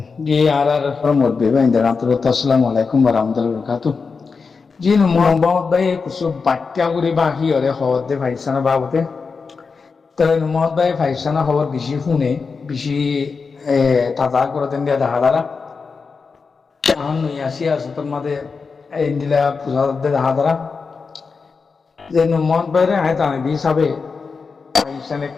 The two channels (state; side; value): quieter; right; 4.9 dB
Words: जी आर आर फ्रॉम मुरबी भाई इंदर अस्सलाmu alaikum warahmatullahi wabarakatuh. जी मोहम्मद भाई कुछ बाट्या गुरी बाकी और खबर दे भाई सना बाबूते तो मोहम्मद भाई भाई सना खबर बिशी फुने बिशी ताजा করে দেন দিয়া দেখা দাঁড়া এখন নই আসি আছে তোর মাঝে ইন্দিলা পূজা দে দেখা দাঁড়া যে মোহম্মদ ভাই রে আয় তানে হিসাবে ভাই সনে